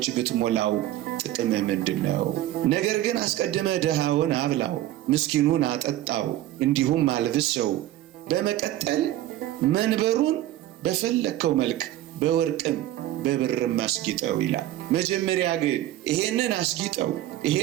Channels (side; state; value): left; quieter; 14.2 dB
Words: ብትሞላው ጥቅም ምንድን ነው? ነገር ግን አስቀድመ ድሃውን አብላው፣ ምስኪኑን አጠጣው፣ እንዲሁም አልብሰው፣ በመቀጠል መንበሩን በፈለከው መልክ በወርቅም በብርም አስጊጠው ይላል። መጀመሪያ ግን ይሄንን አስጊጠው፣